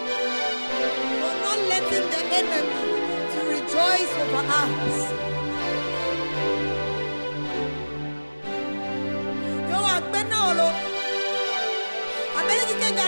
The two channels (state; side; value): inverted; both; correlation -1.00